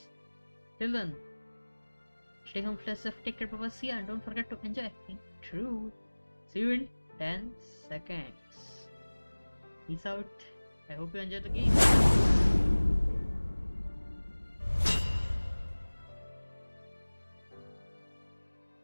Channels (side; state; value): both; inverted; correlation -1.00